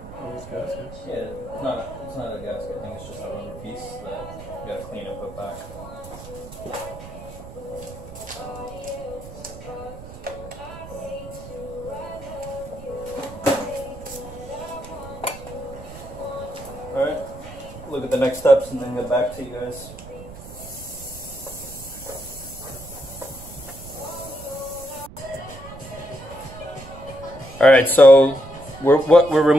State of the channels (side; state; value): right; noise; rumble, 15 dB below the sound